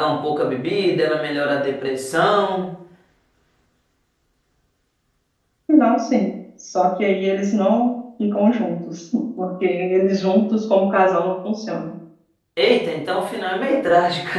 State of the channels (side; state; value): both; identical; correlation 1.00